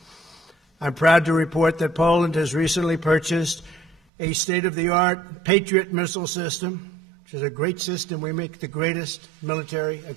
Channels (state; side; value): drops out; left; at 4.0 s